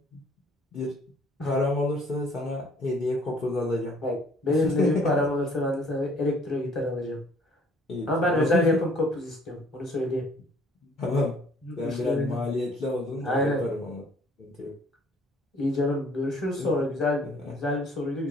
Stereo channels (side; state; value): both; normal; correlation 0.58